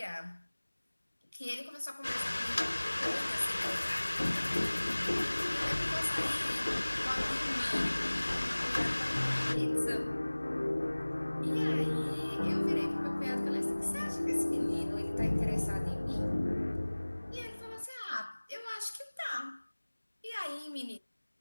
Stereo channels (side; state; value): both; inverted; correlation -1.00